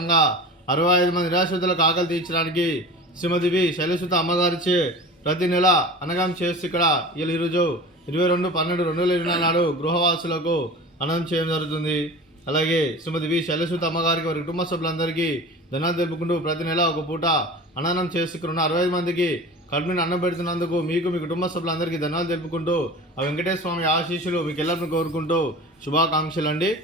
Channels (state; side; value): normal; both; correlation 0.36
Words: 65 మంది నిరాశ్రితులకు ఆకలి తీర్చడానికి శ్రీమతి వి శైలసుత అమ్మగారిచే ప్రతి నెల అన్నదానం చేస్తూ ఇక్కడ ఈరోజు 22/12/2024 నాడు గృహవాసులకు అన్నం చేయడం జరుగుతుంది. అలాగే శ్రీమతి వి శైలసుత అమ్మగారికి వారి కుటుంబ సభ్యులందరికీ ధన్యవాదాలు తెలుపుకుంటూ ప్రతి నెల ఒక పూట అన్నదానం చేసుకున్న 65 మందికి కడుపుని అన్నం పెడుతున్నందుకు మీకు మీ కుటుంబ సభ్యులందరికీ ధన్యవాదాలు తెలుపుకుంటూ ఆ వెంకటేశ్వర స్వామి ఆశీస్సులు మీకు ఎల్లరిని కోరుకుంటూ శుభాకాంక్షలు అండి.